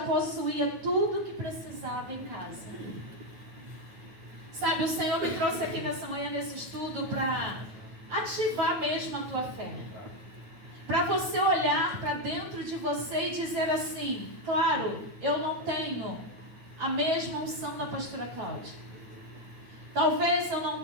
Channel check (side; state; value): left; late; 9.2 ms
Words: tudo que precisava em casa. Sabe, o Senhor me trouxe aqui nessa manhã, nesse estudo, para ativar mesmo a tua fé. Para você olhar para dentro de você e dizer assim: claro, eu não tenho a mesma unção da pastora Cláudia. Talvez eu não